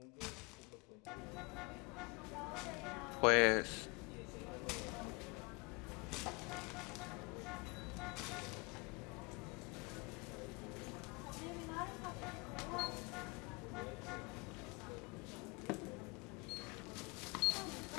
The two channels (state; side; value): quieter; right; 30.0 dB